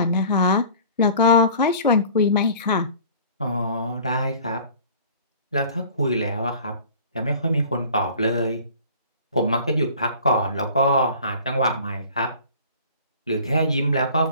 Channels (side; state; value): both; inverted; correlation -0.46